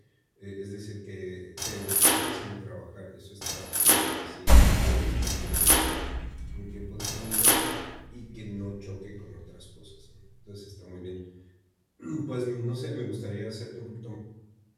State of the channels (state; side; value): identical; both; correlation 1.00